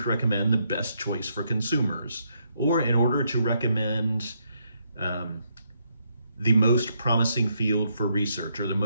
recommend the best choice for consumers, or in order to recommend the most promising field for research, or the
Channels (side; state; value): both; inverted; correlation -0.75